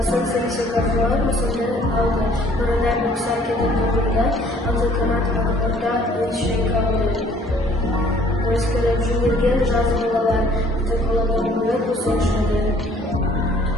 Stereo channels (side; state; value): both; normal; correlation 0.58